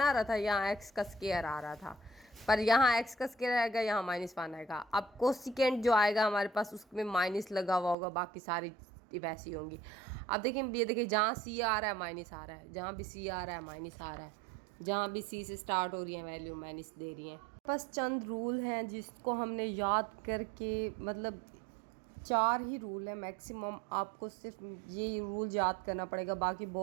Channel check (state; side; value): drops out; left; at 8.0 s